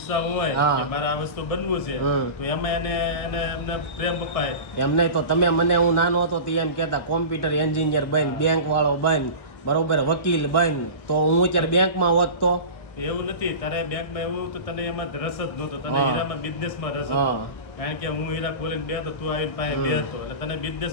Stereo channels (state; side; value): late; right; 1.4 ms